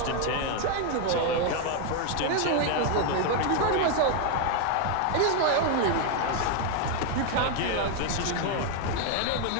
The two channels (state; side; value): different; both; correlation 0.01